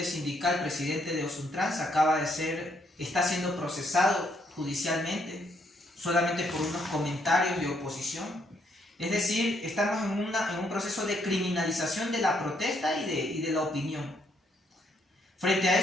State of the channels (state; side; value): normal; both; correlation 0.72